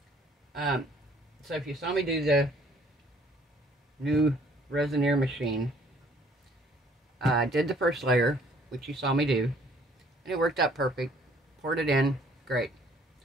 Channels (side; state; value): both; normal; correlation 0.59